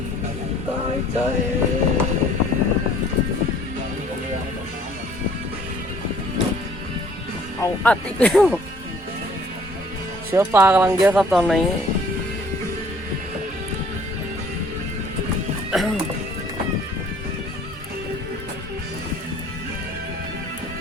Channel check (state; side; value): normal; both; correlation 0.56